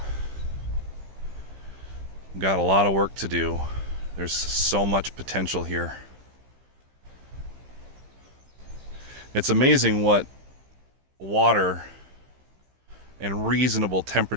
We've got a lot of work to do. There's so much potential here. It's amazing what water and reasonable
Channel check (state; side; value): late; left; 15 ms